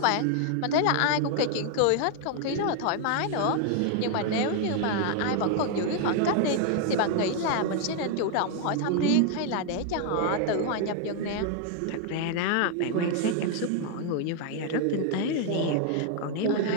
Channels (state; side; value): different; both; correlation 0.00